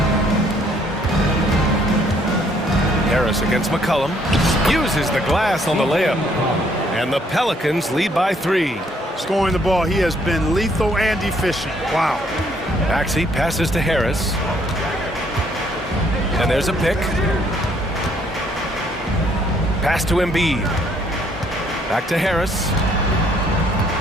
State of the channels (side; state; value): both; normal; correlation 0.66